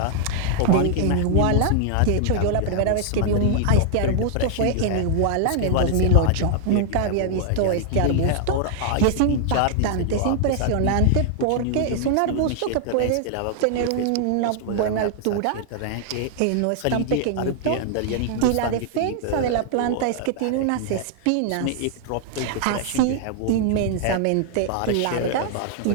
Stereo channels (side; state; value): both; different; correlation 0.00